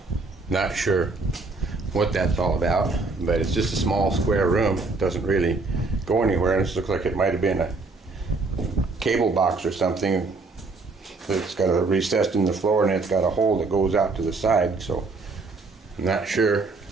not sure what that's all about, but it's just a small square room. It doesn't really go anywhere, and this looks like it might have been a cable box or something. It's got a recess in the floor, and it's got a hole that goes out to the side, so I'm not sure.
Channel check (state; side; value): quieter; left; 3.7 dB